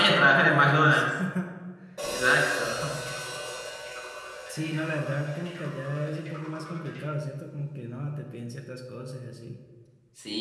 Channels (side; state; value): both; identical; correlation 1.00